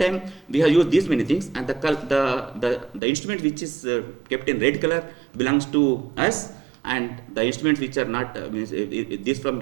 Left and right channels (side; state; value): left; drops out; at 3.0 s